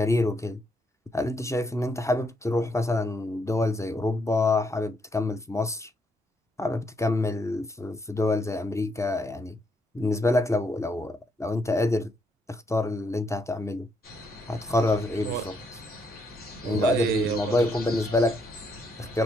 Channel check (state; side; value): normal; both; correlation 0.75